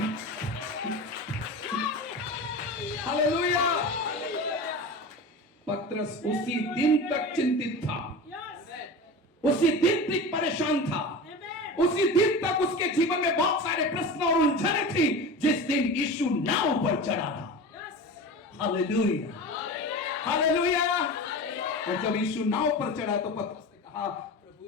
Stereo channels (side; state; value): both; normal; correlation 0.30